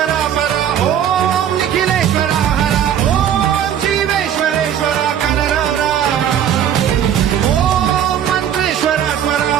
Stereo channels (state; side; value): quieter; left; 9.7 dB